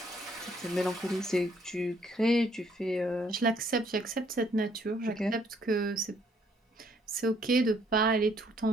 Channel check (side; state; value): both; normal; correlation 0.66